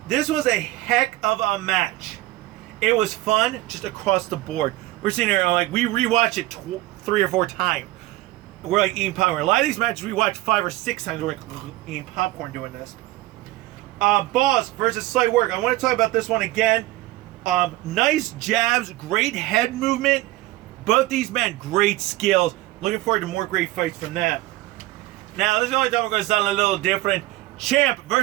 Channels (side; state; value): left; quieter; 17.8 dB